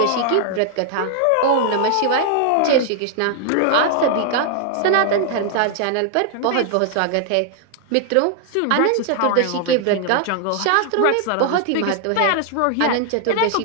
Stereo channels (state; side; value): different; both; correlation 0.00